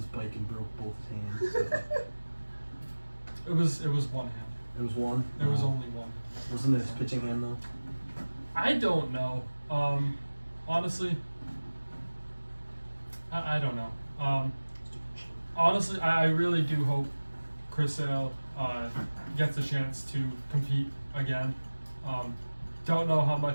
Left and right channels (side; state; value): both; inverted; correlation -1.00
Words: bike and broke both his hands. So. It was one hand. It was one. There was only one. Wasn't it his pitching hand though? I don't know. Honestly, I don't know. Honestly, I really do hope Chris Sale gets a chance to compete again. Don't know how